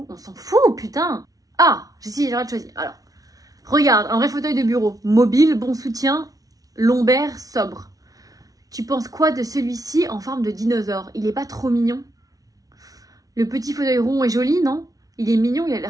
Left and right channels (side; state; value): left; late; 0.18 ms